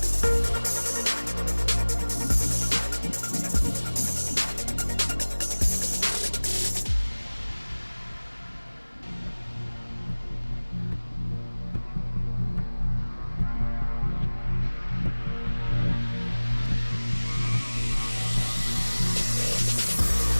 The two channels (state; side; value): inverted; both; correlation -1.00